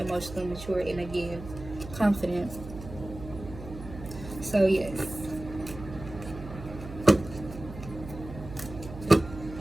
mature and, again, confident. So yes.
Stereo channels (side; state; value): right; noise; hum, 12 dB below the sound